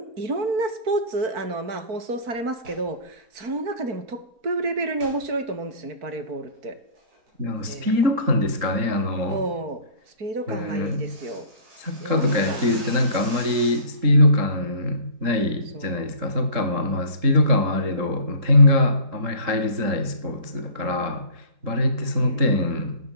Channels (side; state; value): left; late; 3.8 ms